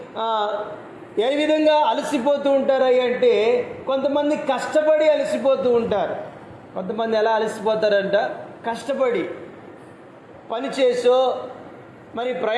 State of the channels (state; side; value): identical; both; correlation 1.00